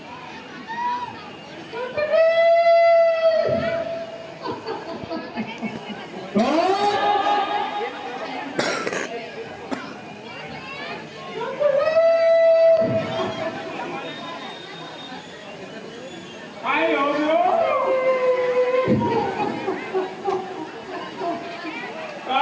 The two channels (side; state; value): both; identical; correlation 1.00